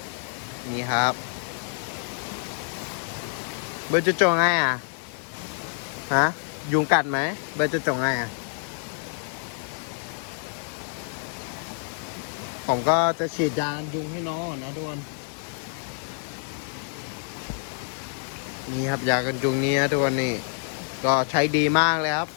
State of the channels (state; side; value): silent; right; 60 dB below the other